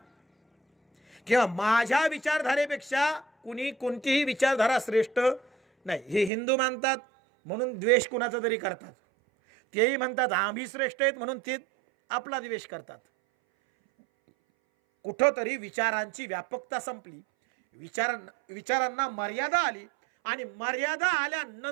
किंवा माझ्या विचारधारेपेक्षा कुणी कोणतीही विचारधारा श्रेष्ठ नाही. हे हिंदू मानतात म्हणून द्वेष कुणाचा तरी करतात, तेही म्हणतात आम्ही श्रेष्ठ आहेत म्हणून ते आपला द्वेष करतात. कुठंतरी विचारांची व्यापकता संपली, विचारांना मर्यादा आली, आणि मर्यादा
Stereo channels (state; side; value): drops out; left; at 6.3 s